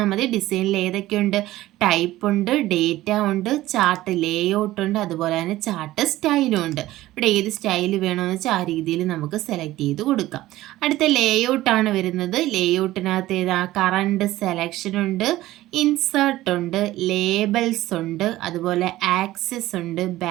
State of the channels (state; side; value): quieter; left; 16.1 dB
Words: മതി. ഡിസൈനിൽ ഏതൊക്കെയുണ്ട്? ടൈപ്പ് ഉണ്ട്, ഡേറ്റ ഉണ്ട്, ചാർട്ട് ലേഔട്ട് ഉണ്ട്, അതുപോലെ തന്നെ ചാർട്ട് സ്റ്റൈലും ഉണ്ട്. ഇവിടെ ഏത് സ്റ്റൈൽ വേണമെന്ന് വെച്ചാൽ ആ രീതിയിൽ നമുക്ക് സെലക്ട് ചെയ്ത് കൊടുക്കാം. അടുത്ത ലേഔട്ടാണ് വരുന്നത്. ലേഔട്ടിനകത്ത് ഏതാ? കറണ്ട് സെലക്ഷൻ ഉണ്ട്, ഇൻസേർട്ട് ഉണ്ട്, ലേബൽസ് ഉണ്ട്, അതുപോലെ ആക്സസ് ഉണ്ട്,